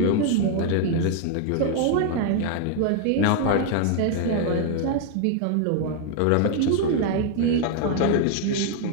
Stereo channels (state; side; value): different; both; correlation 0.00